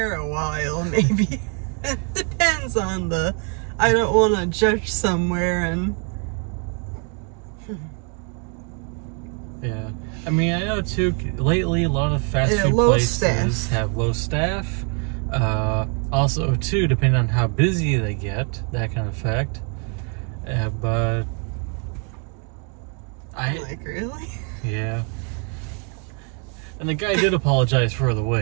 a while, maybe. It depends on the... I don't want to judge somewhere and... Yeah. I mean, I know too, lately a lot of fast food places have low staff. Also, too, depending on how busy they get, that can affect. But like, really? Yeah. And the guy did apologize for the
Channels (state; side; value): quieter; left; 38.8 dB